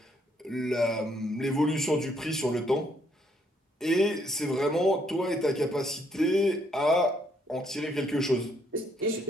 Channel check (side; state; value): both; normal; correlation 0.70